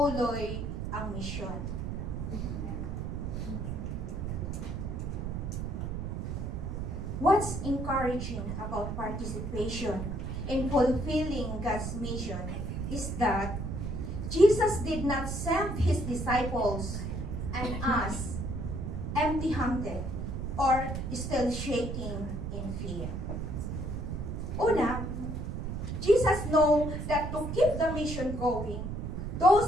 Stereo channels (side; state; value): right; noise; rumble, 4 dB below the sound